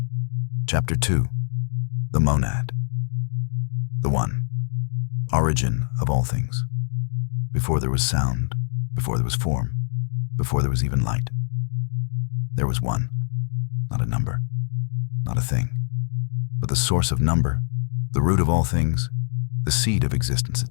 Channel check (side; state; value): right; silent; digital silence